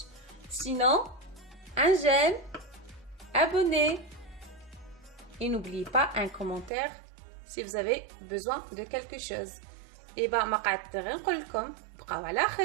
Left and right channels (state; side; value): drops out; left; at 6.7 s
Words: سينو un j'aime, abonnez et n'oubliez pas un commentaire si vous avez besoin de quelque chose. Et bah ما قعدت غير نقول لكم بقاو على